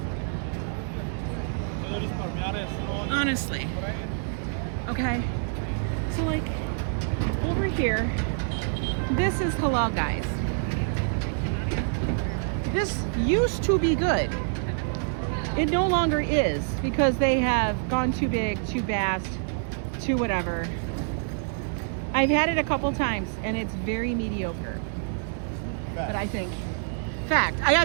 honestly. Okay, so like, over here, this is halal, guys. This used to be good. It no longer is, because they have gone too big, too fast, too whatever. I've had it a couple times, and it's very mediocre. But I think, fact, I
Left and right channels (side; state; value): left; silent; 60 dB below the other